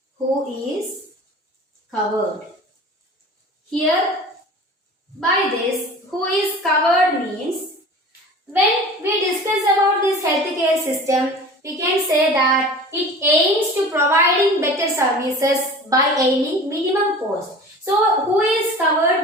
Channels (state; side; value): normal; both; correlation 0.40